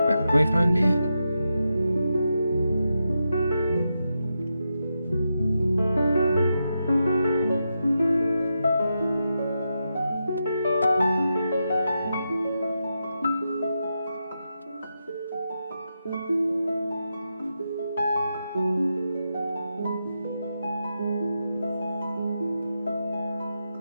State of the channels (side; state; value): both; inverted; correlation -0.86